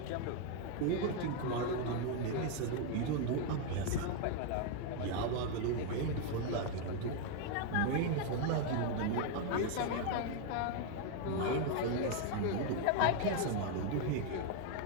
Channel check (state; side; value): different; both; correlation 0.01